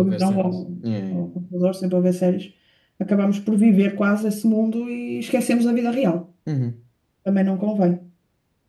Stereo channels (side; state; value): both; identical; correlation 1.00